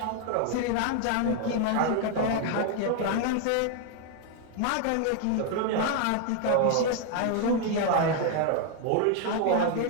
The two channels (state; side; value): different; both; correlation 0.00